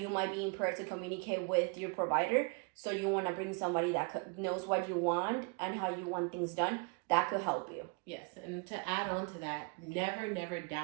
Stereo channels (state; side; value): quieter; left; 34.1 dB